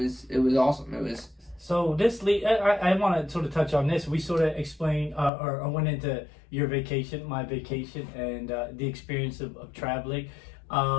awesome. It was. So I want to sort of touch on this. We sort of explained or went into your vacation, my vacation, and the experience of traveling.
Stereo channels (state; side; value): drops out; right; at 5.3 s